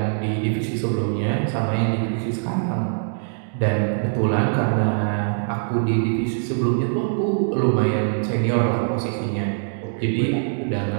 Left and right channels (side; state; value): left; silent; digital silence